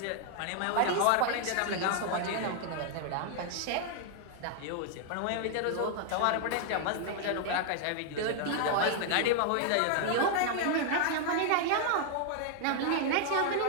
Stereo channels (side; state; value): both; different; correlation -0.01